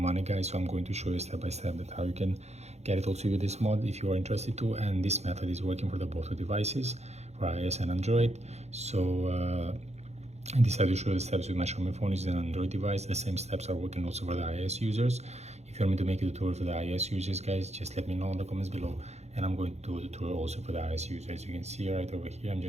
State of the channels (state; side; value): late; left; 0.32 ms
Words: guys. So I'm going to show you step by step that how you can get it also with this mod if you are interested to, and this method is working for the both devices, for iOS and Android. So I decided to show the steps with my Xiaomi phone, which is an Android device. The same steps are working also for the iOS users. If you want me to make a tutorial for the iOS users, guys, just let me know in the comments below, and I'm going to do a tutorial also for the iOS users. As you can see right over here, I'm